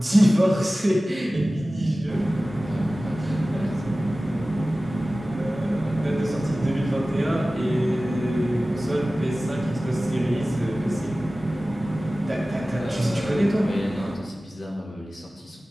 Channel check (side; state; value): both; normal; correlation 0.97